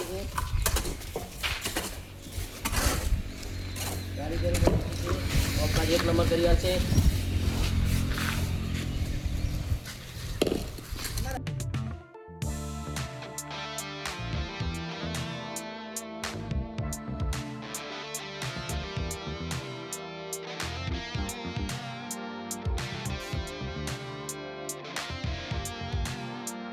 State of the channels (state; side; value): identical; both; correlation 1.00